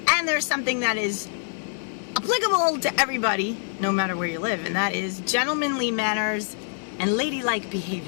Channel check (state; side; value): silent; right; 62 dB below the other